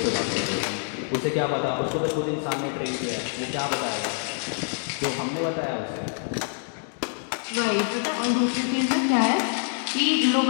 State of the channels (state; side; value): silent; right; 61 dB below the other